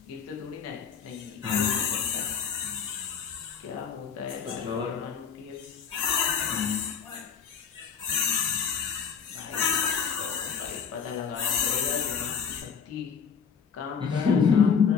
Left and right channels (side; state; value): right; quieter; 6.6 dB